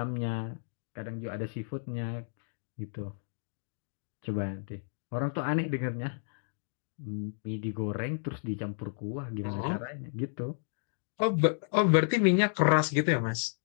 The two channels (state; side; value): silent; right; digital silence